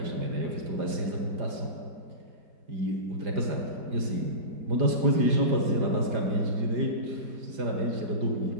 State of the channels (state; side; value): late; left; 4.9 ms